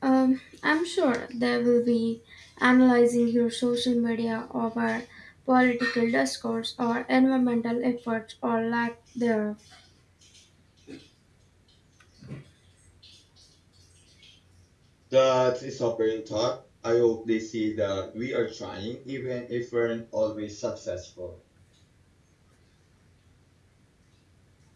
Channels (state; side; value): identical; both; correlation 1.00